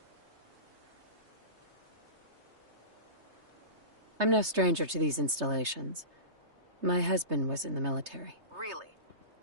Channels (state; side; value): late; left; 3.3 ms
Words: I'm no stranger to these installations. My husband was in the military. Really?